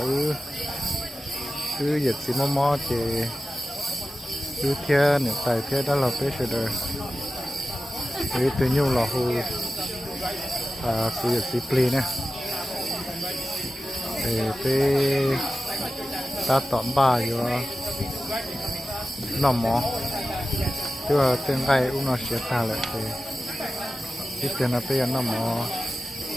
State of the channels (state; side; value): normal; both; correlation 0.93